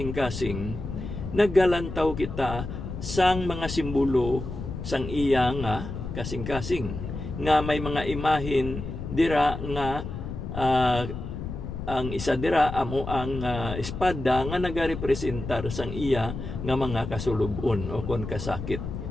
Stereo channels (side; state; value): left; noise; rumble, 7 dB below the sound